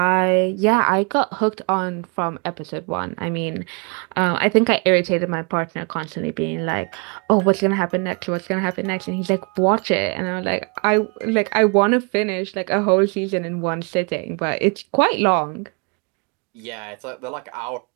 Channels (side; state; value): left; quieter; 34.6 dB